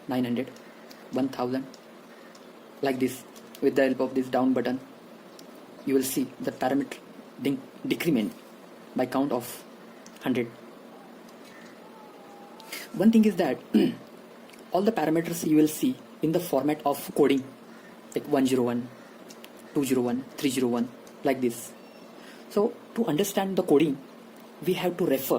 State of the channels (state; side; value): identical; both; correlation 1.00